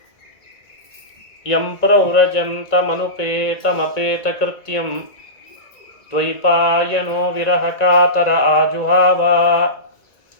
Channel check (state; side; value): late; right; 1.9 ms